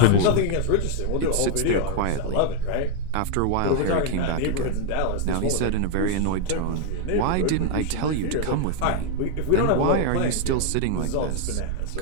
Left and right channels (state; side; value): different; both; correlation 0.00